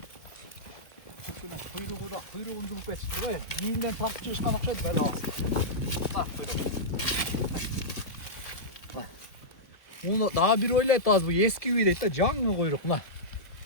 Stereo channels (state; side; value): late; right; 1.3 ms